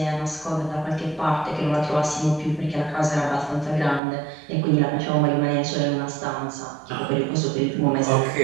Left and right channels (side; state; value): left; drops out; at 4.0 s